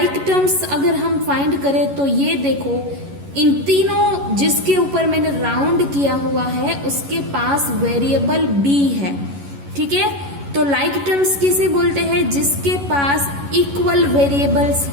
टर्म्स अगर हम फाइंड करें तो ये देखो, इन तीनों जिसके ऊपर मैंने राउंड किया हुआ है उसके पास वेरिएबल b है, ठीक है। तो लाइक टर्म्स किसे बोलते हैं? जिसके पास इक्वल वेरिएबल्स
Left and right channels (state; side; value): late; left; 11 ms